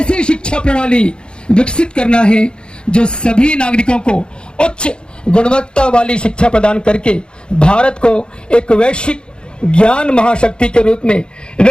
शिक्षा प्रणाली विकसित करना है जो सभी नागरिकों को उच्च गुणवत्ता वाली शिक्षा प्रदान करके भारत को एक वैश्विक ज्ञान महाशक्ति के रूप में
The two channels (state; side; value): late; right; 0.051 ms